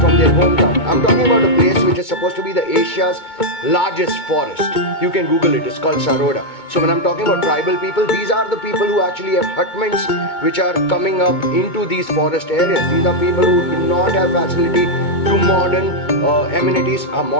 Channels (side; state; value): right; late; 2.2 ms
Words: their hometown. I'm talking about a place which is supposed to be the Asia's largest forest. You can Google it, it's called Saroda. So when I'm talking about tribal people, these are the people who actually have hutments which are coming up into these forest areas. These are people who do not have facility to modern amenities.